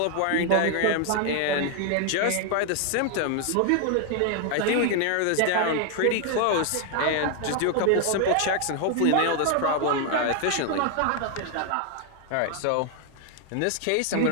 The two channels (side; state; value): both; different; correlation 0.00